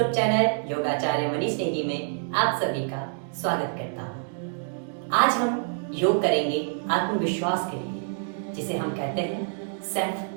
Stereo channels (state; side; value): silent; left; digital silence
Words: channel योगाचार्य Manish Negi में आप सभी का स्वागत करता हूँ। आज हम योग करेंगे आत्मविश्वास के लिए, जिसे हम कहते हैं सेल्फ